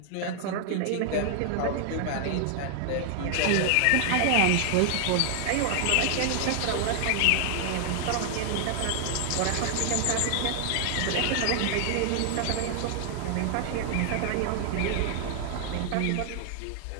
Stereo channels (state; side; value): different; both; correlation 0.00